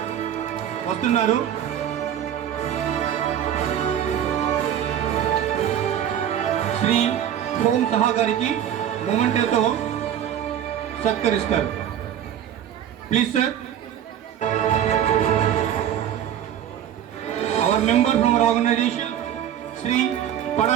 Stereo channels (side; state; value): left; quieter; 10.1 dB